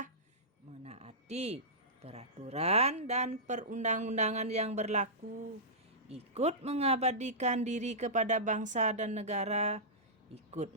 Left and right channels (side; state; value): both; normal; correlation -0.16